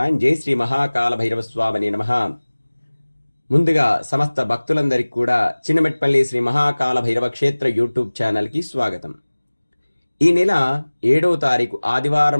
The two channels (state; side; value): inverted; both; correlation -1.00